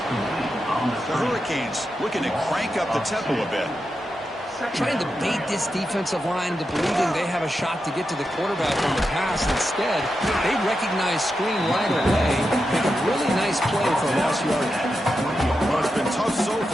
The Hurricanes looking to crank up the tempo a bit. Trying to bait this defensive line into believing they have a shot to get to the quarterback on the pass. Instead, they recognize screen right away. Make a really nice play for a lost yardage. Well, it's been tough so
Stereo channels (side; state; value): both; normal; correlation 0.88